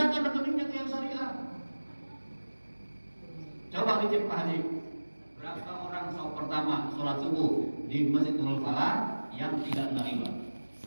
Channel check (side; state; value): both; inverted; correlation -1.00